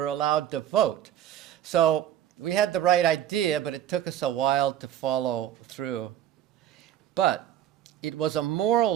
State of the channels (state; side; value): quieter; left; 11.1 dB